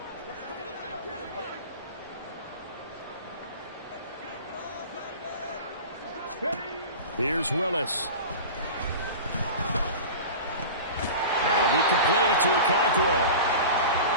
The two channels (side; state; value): both; inverted; correlation -0.33